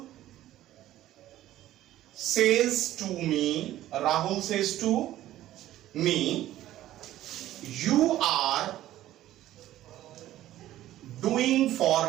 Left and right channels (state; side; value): quieter; left; 13.9 dB